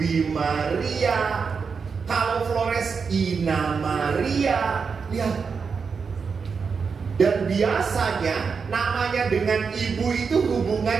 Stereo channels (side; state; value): left; quieter; 5.5 dB